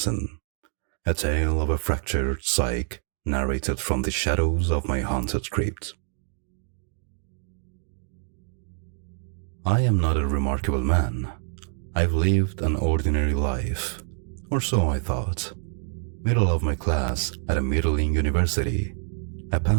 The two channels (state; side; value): silent; left; digital silence